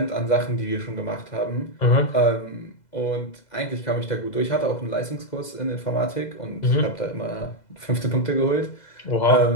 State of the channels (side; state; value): right; late; 2.0 ms